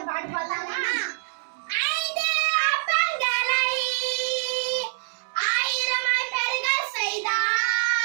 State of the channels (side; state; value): left; silent; digital silence